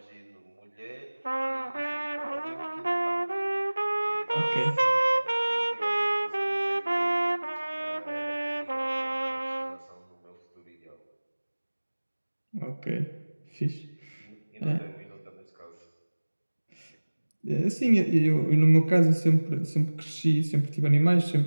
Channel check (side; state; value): both; inverted; correlation -1.00